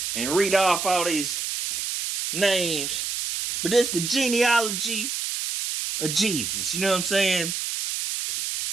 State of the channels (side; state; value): right; noise; hiss, 3 dB below the sound